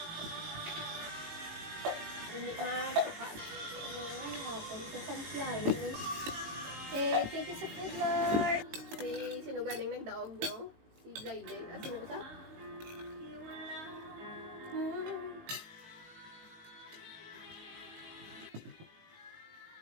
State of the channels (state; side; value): late; left; 18 ms